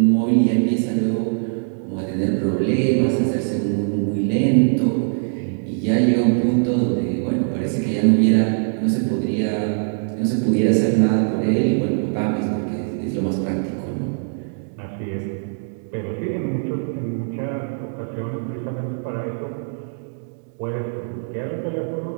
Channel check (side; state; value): left; silent; digital silence